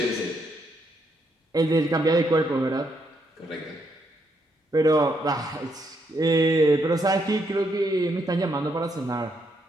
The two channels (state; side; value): normal; both; correlation 0.76